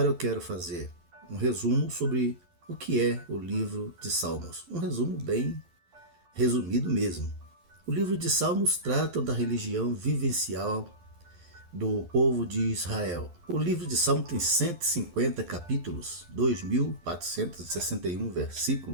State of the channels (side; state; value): left; late; 12 ms